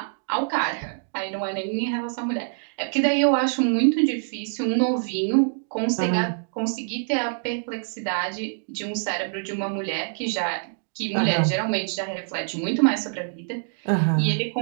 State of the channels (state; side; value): silent; left; digital silence